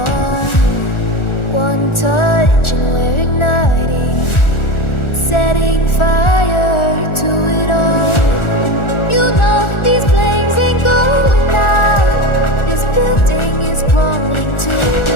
One touch and we're igniting, setting fire to it all. You know these flames ain't going out. This building is crumbling to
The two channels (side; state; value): right; late; 1.4 ms